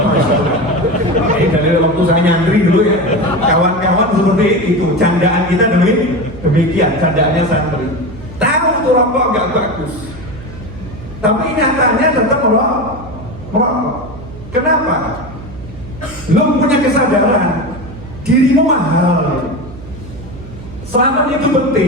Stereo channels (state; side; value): noise; right; hum, 15 dB below the sound